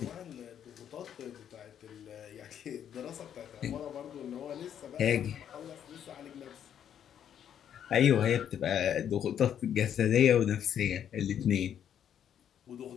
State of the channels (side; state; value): right; quieter; 9.4 dB